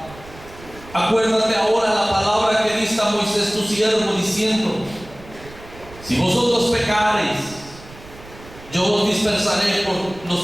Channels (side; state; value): right; noise; rumble, 19 dB below the sound